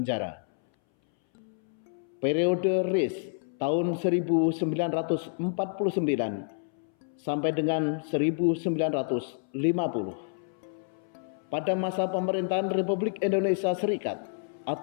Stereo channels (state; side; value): silent; right; 59 dB below the other